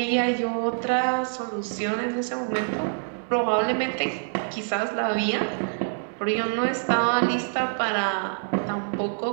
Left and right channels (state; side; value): silent; left; digital silence